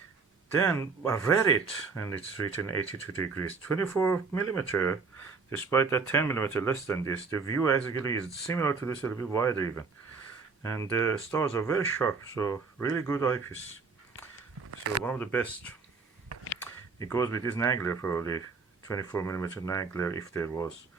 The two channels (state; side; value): quieter; left; 4.8 dB